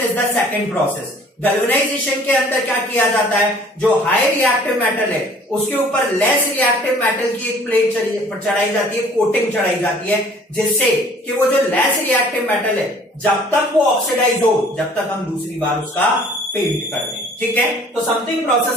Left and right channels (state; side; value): normal; both; correlation 0.53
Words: is the second process. Galvanisation के अंदर क्या किया जाता है, जो हाई रिएक्टिव मेटल है उसके ऊपर लेस रिएक्टिव मेटल की एक प्लेट चढ़ाई जाती है, कोटिंग चढ़ाई जाती है, जिससे कि वो जो लेस रिएक्टिव मेटल है जब तक वो ऑक्सीडाइज हो, जब तक हम दूसरी बार उसका पेंट कर दें। ठीक है, तो something